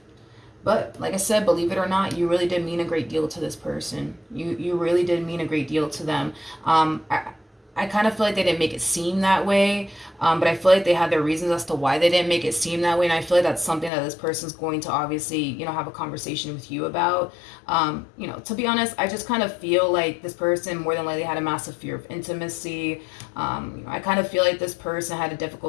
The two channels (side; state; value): right; drops out; at 13.9 s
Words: But like I said, believe it or not, you really did mean a great deal to this person. You really did mean a great deal to them. I kind of feel like they didn't make it seem that way, but I feel like they had their reasons as to why they didn't make it seem that way, and I feel like that's something that this person's going to obviously, have a conversation with you about. To be honest, I just kind of feel like this person more than likely had a massive fear of intimacy. I kind of feel like this person had a